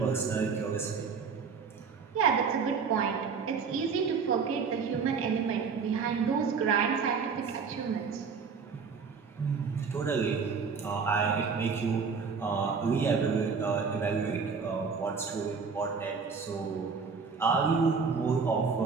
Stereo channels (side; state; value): left; quieter; 5.5 dB